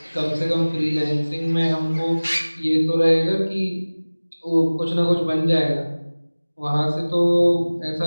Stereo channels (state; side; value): inverted; both; correlation -1.00